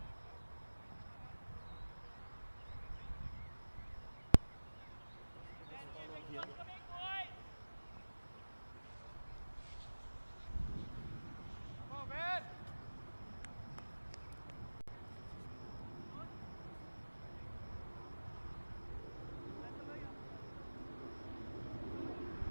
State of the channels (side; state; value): both; inverted; correlation -1.00